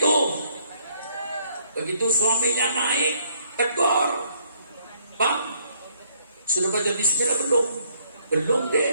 Begitu suaminya naik, tegur. Bang, sudah baca bismillah belum? Belum deh.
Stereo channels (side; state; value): both; inverted; correlation -0.67